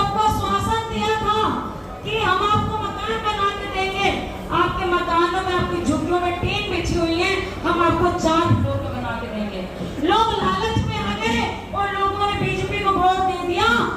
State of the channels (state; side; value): identical; both; correlation 1.00